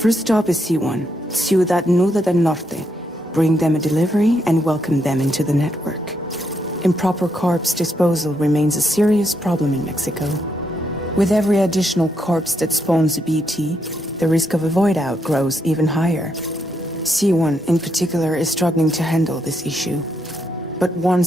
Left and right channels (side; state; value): both; normal; correlation 0.78